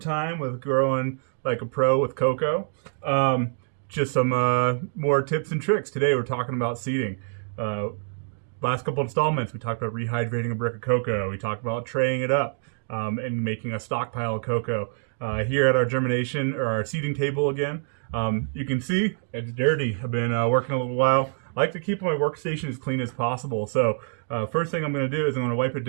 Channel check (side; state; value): left; silent; digital silence